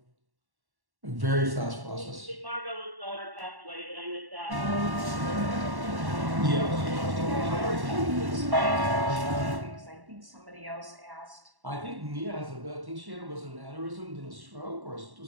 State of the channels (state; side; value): late; left; 1.1 ms